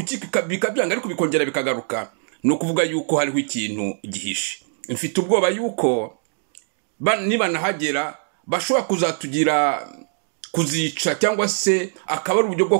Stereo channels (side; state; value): left; silent; digital silence